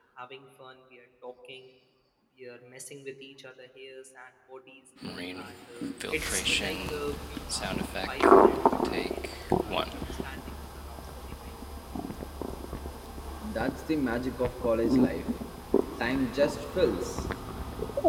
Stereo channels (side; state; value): both; identical; correlation 1.00